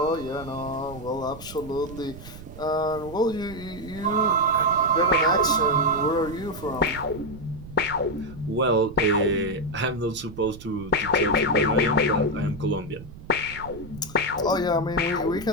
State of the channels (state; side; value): noise; right; rumble, 15 dB below the sound